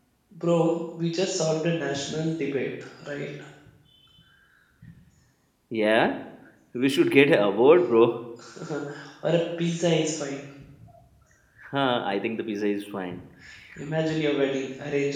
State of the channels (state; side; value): identical; both; correlation 1.00